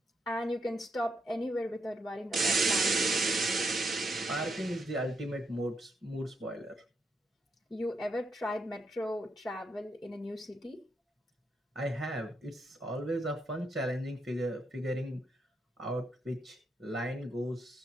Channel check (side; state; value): both; normal; correlation 0.80